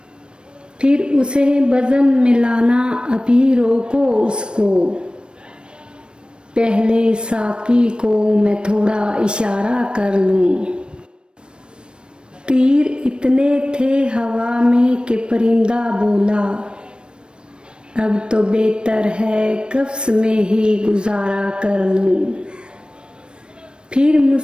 फिर उसे बज़म मिलाना अभी रोको उसको। पहले साकी को मैं थोड़ा इशारा कर लूं। तीर इतने थे हवा में कि परिंदा बोला, अब तो बेहतर है कब्स में ही गुजारा कर लूं। फिर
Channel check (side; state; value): left; late; 0.054 ms